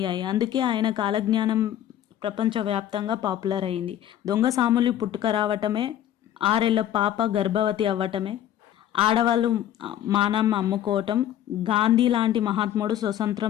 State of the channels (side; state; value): right; quieter; 11.5 dB